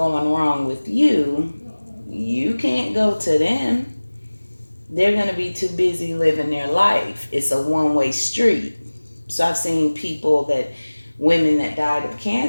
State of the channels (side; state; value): both; inverted; correlation -1.00